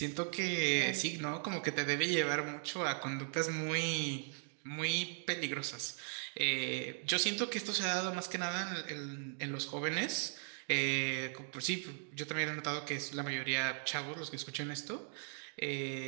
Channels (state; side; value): silent; left; 52 dB below the other